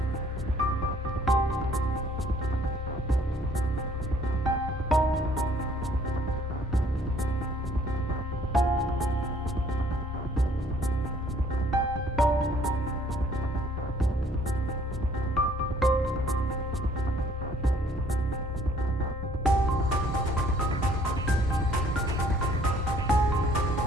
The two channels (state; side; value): normal; both; correlation 0.60